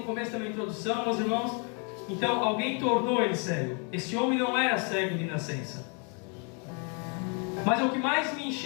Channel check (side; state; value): right; quieter; 37.0 dB